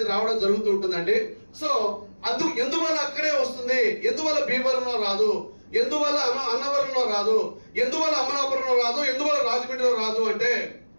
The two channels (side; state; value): both; inverted; correlation -1.00